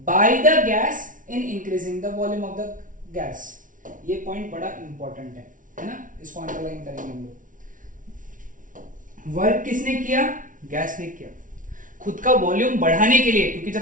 by the gas in increasing the volume of the gas. ये पॉइंट बड़ा इंपॉर्टेंट है ना, इसको अंडरलाइन करेंगे हम लोग। वर्क किसने किया? गैस ने किया, खुद का वॉल्यूम बढ़ाने के लिए, क्योंकि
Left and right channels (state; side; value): late; left; 0.38 ms